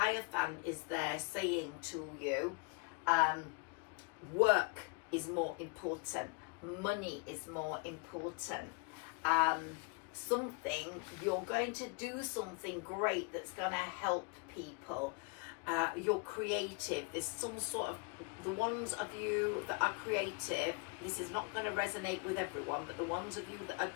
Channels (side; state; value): right; quieter; 30.2 dB